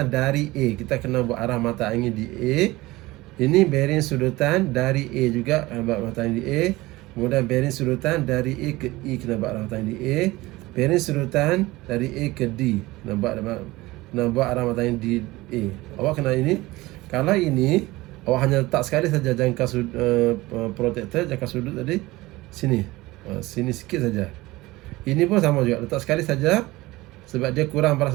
dari A. Kita kena buat arah mata angin di A. Ini bearing sudutan dari A juga, buat mata angin di A. Kemudian bearing sudutan dari A ke E, kena buat arah mata angin di A. Bearing sudutan dari A ke D, kena buat arah mata angin di A. Awak kena ini. Kalau ini, awak hanya letak sekali saja jangka protektor, jangka sudut tadi sini. Sini sikit saja. Ini pun sama juga, letak sekali saja sebab dia kurang pada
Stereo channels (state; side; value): quieter; left; 19.8 dB